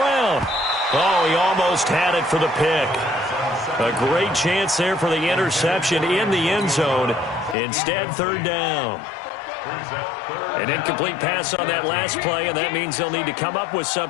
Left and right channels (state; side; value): drops out; right; at 7.6 s